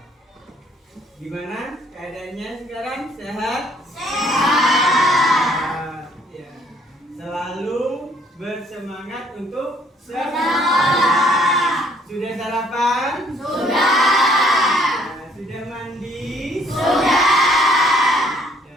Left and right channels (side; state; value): both; normal; correlation 0.63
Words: Gimana keadaannya sekarang? Sehat? Sehat. Ya. Selalu bersemangat untuk sekolah. Sudah sarapan? Sudah. Sudah mandi? Sudah.